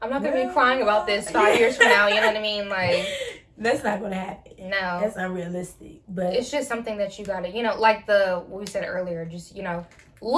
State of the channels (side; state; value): both; identical; correlation 1.00